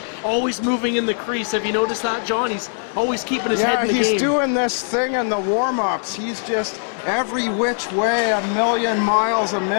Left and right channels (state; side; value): silent; right; digital silence